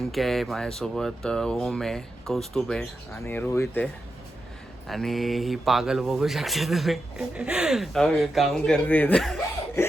आहे माझ्यासोबत, ओम आहे, कौस्तुभ आहे आणि रोहित आहे. आणि ही पागल बघू शकता तुम्ही काम करते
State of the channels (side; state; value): both; normal; correlation 0.88